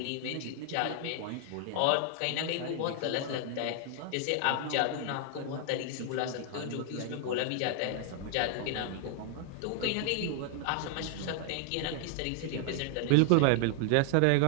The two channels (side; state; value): both; different; correlation 0.00